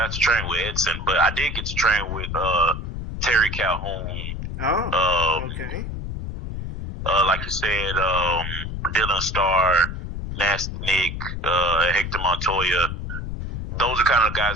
to train with Edson, but I did get to train with Terry Calhoun. Oh, okay. Like you said, Dylan Starr, Nasty Nick, Hector Montoya. Those are kind of the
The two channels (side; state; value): left; noise; rumble, 5 dB below the sound